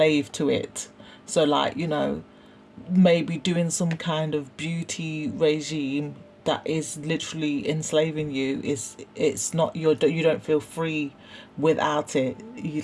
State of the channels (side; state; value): both; identical; correlation 1.00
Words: to it. So like, you know, maybe doing some kind of beauty regime that is literally enslaving you, it's not you don't feel free without it. You